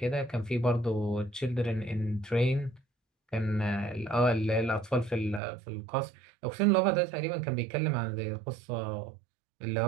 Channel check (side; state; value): left; drops out; at 5.4 s